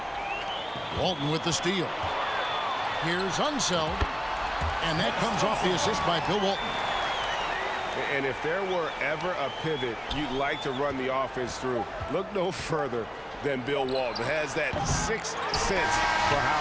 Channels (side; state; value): both; identical; correlation 1.00